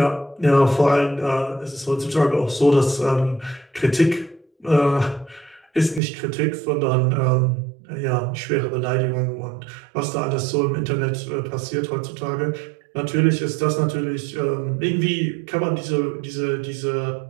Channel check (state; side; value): drops out; left; at 6.0 s